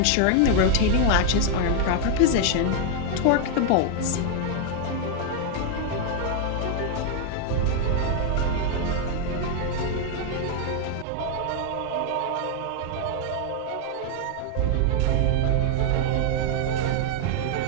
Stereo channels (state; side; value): different; both; correlation 0.00